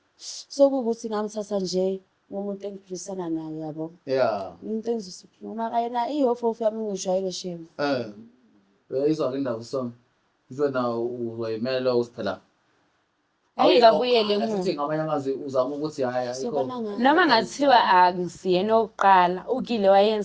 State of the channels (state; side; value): identical; both; correlation 1.00